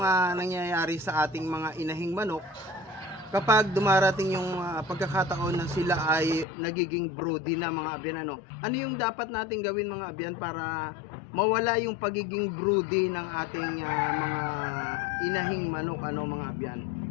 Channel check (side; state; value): right; drops out; at 6.5 s